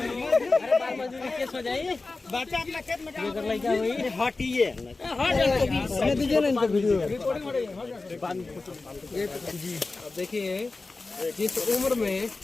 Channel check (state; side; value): quieter; right; 3.6 dB